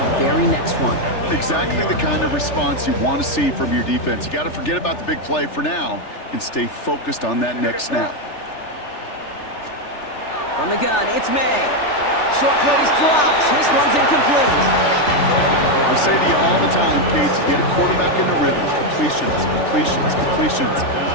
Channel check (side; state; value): right; late; 3.4 ms